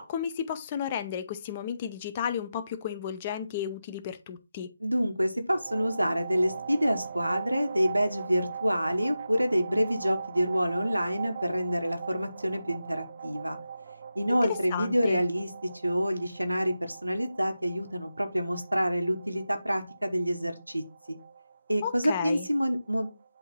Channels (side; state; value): both; inverted; correlation -0.91